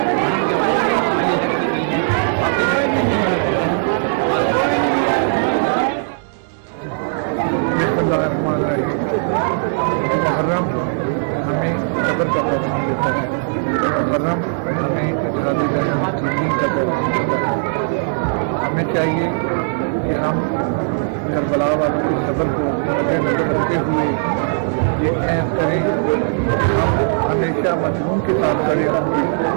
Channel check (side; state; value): left; silent; digital silence